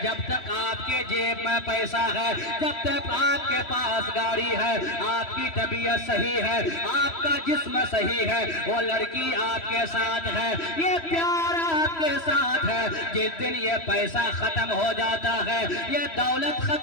جب تک آپ کے جیب میں پیسہ ہے، جب تک آپ کے پاس گاڑی ہے، آپ کی طبیعت صحیح ہے، آپ کا جسم صحیح ہے، وہ لڑکی آپ کے ساتھ ہے، یہ پیار آپ کے ساتھ ہے. جس دن یہ پیسہ ختم ہو جاتا ہے، یہ دولت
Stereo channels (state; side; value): late; right; 3.1 ms